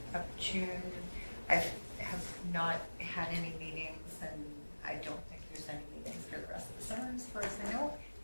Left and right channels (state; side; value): inverted; both; correlation -1.00